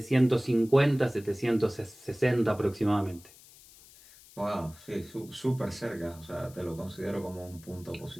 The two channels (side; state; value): left; noise; hiss, 22 dB below the sound